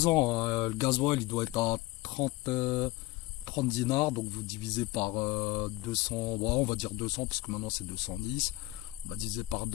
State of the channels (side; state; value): right; quieter; 18.8 dB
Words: ans. Hein. Le gasoil il doit être à 30 dinars, donc vous divisez par 200, bon, on va dire 200 parce que maintenant c'est 210. On va diviser par